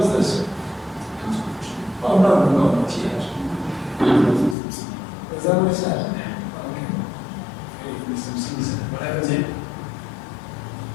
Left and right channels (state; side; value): drops out; right; at 4.5 s